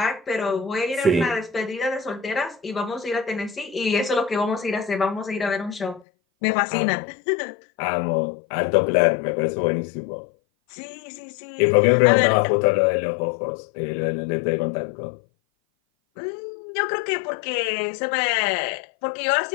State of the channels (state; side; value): drops out; right; at 6.1 s